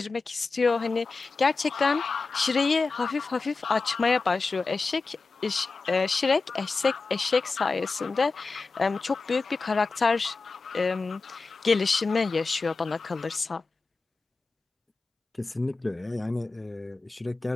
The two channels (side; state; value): right; quieter; 4.0 dB